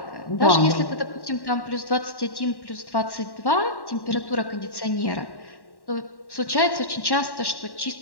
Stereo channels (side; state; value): right; late; 1.1 ms